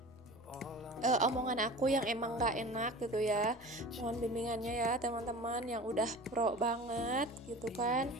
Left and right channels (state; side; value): noise; right; rumble, 28 dB below the sound